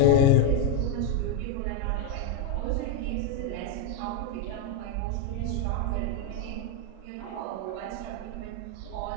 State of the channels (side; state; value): both; different; correlation 0.02